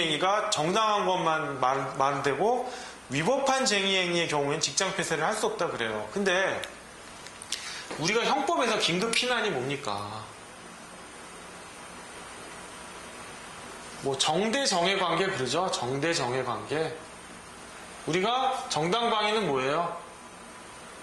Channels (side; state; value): both; identical; correlation 1.00